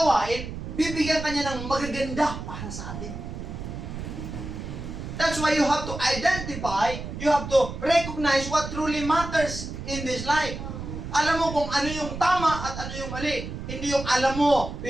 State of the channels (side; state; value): right; noise; rumble, 8 dB below the sound